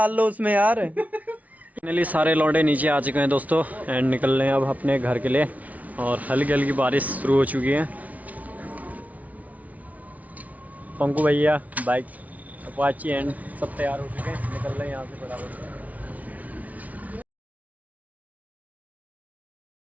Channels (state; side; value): late; left; 0.071 ms